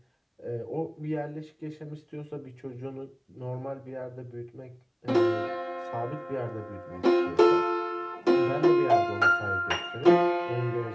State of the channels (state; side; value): identical; both; correlation 1.00